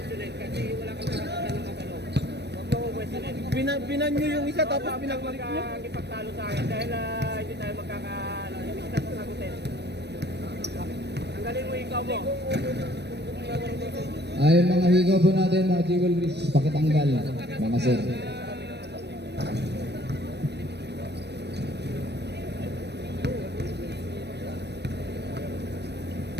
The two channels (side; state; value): left; late; 0.49 ms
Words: Kasi wala kang karapatan ng matanong. Huwag mo questionin. Binan niyo yung isa tapos pinagpalit niyo. Magkakipagtalo sa akin dahil hindi tayo hindi kita sasagutin. Tanggalin mo ikaw mo. Ay, mga higaw po natin, mga jewelries, pakitanggal, mga sir.